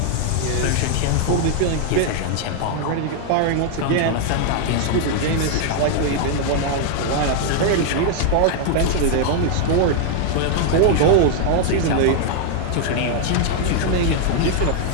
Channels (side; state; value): both; different; correlation 0.00